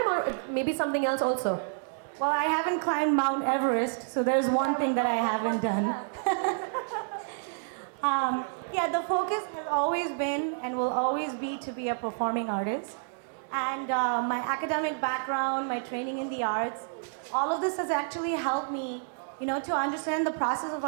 or maybe something else also? Well, I haven't climbed Mount Everest, so there's one thing that I haven't done. Yeah, the focus has always been and will always be to be a performing artist. And my academic background, my training in the arts, all of this has actually helped me, to understand the process of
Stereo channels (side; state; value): left; silent; digital silence